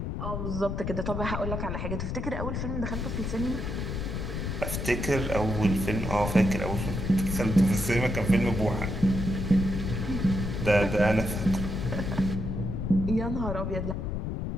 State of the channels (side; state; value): left; noise; rumble, 3 dB below the sound